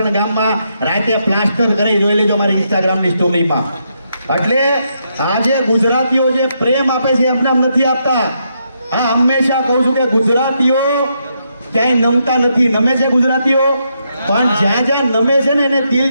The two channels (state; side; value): inverted; both; correlation -0.79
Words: ગામમાં રાતે પ્લાસ્ટર કરી જોઈ લેજો મારી ઇન્સ્ટાગ્રામની સ્ટોરીમાં. એટલે આજે ગુજરાતીઓ જે પ્રેમ આપે છે એમને નથી આપતા. હા, હંમેશા કહું છું કે ગુજરાતીઓ ક્યાંય નમતા નથી. નમે છે ગુજરાતીઓ, પણ જ્યાં જ્યાં નમે છે ને એને